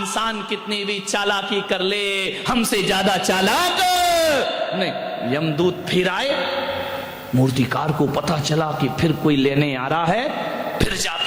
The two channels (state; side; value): identical; both; correlation 1.00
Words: कितनी भी चालाकी कर ले, हमसे ज्यादा चालाक नहीं। यमदूत फिर आए, मूर्तिकार को पता चला कि फिर कोई लेने आ रहा है, फिर